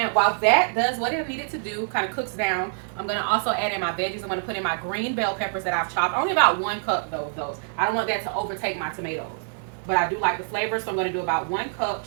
while that does what it needed to do, kind of cooks down, I'm going to also add in my veggies. I'm going to put in my green bell peppers that I've chopped. Only about 1 cup though of those. I don't want that to overtake my tomatoes, but I do like the flavor, so I'm going to do about 1 cup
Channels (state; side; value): silent; left; 56 dB below the other